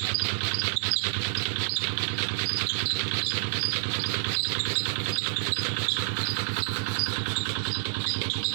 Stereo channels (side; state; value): left; silent; digital silence